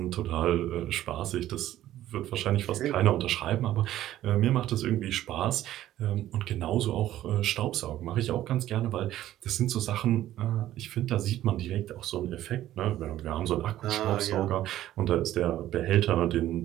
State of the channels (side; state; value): left; quieter; 13.4 dB